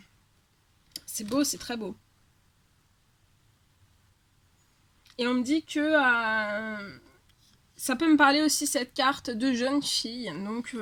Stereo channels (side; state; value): both; identical; correlation 1.00